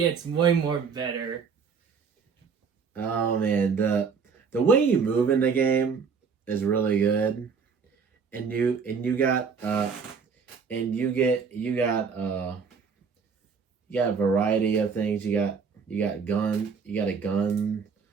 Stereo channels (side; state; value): left; quieter; 5.8 dB